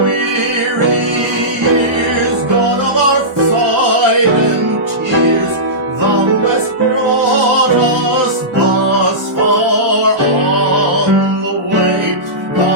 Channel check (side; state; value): both; normal; correlation -0.18